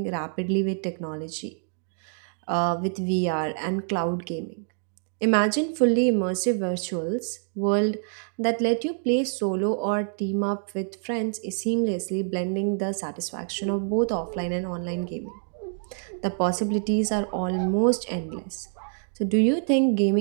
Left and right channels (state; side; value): silent; left; 61 dB below the other